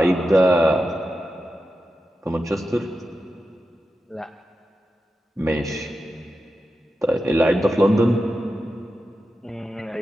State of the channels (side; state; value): both; normal; correlation 0.90